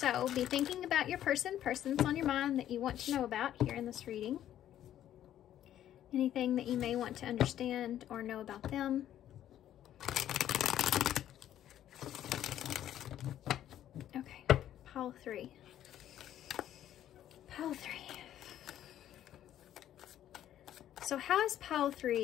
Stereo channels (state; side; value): quieter; right; 11.6 dB